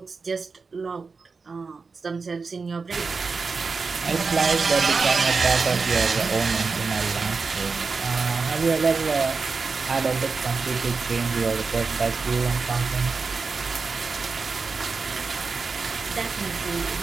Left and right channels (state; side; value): quieter; left; 4.6 dB